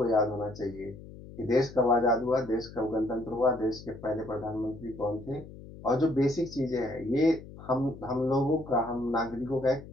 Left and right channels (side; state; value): left; noise; hum, 16 dB below the sound